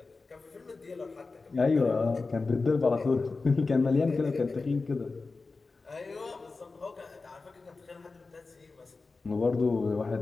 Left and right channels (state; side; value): quieter; right; 3.9 dB